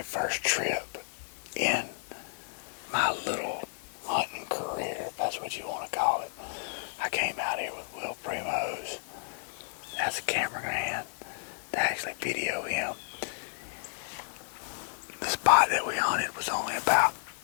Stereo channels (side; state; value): right; silent; 57 dB below the other